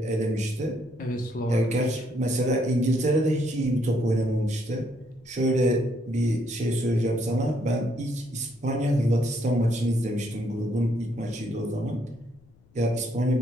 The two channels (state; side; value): noise; left; rumble, 28 dB below the sound